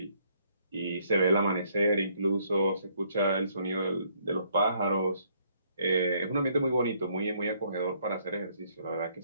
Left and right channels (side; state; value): both; inverted; correlation -0.67